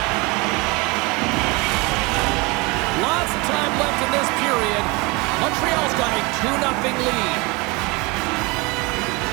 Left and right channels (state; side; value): quieter; left; 26.3 dB